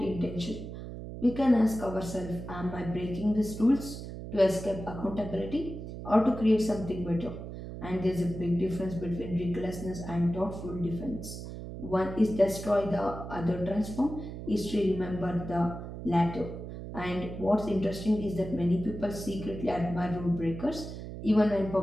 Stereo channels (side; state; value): right; noise; hum, 9 dB below the sound